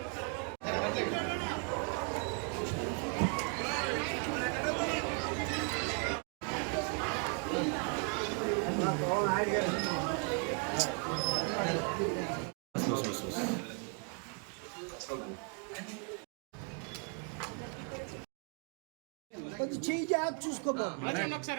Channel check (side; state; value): left; quieter; 38.6 dB